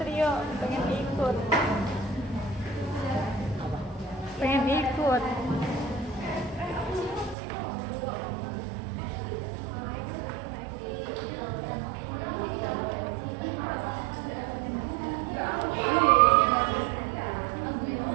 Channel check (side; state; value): left; drops out; at 7.4 s